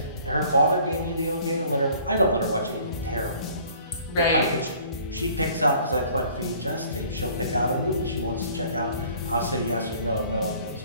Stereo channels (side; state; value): both; inverted; correlation -0.53